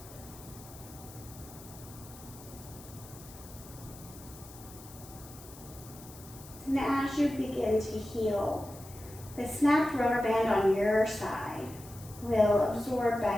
And as you begin to heal, the snapped rubber band on your side will absorb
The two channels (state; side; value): noise; left; hiss, 18 dB below the sound